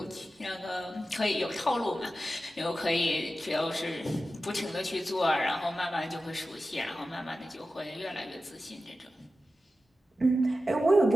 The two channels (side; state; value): both; normal; correlation 0.93